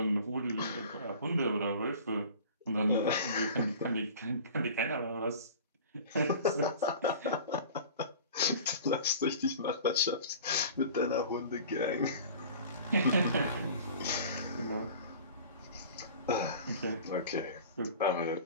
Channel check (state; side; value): inverted; both; correlation -0.41